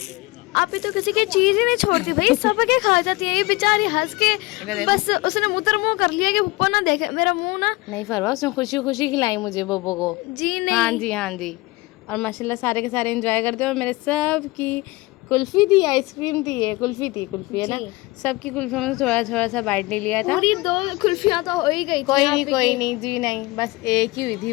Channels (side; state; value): right; quieter; 22.3 dB